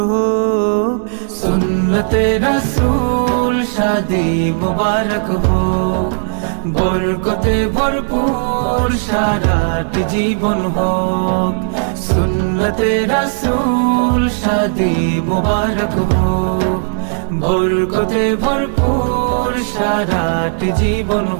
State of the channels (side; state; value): left; silent; digital silence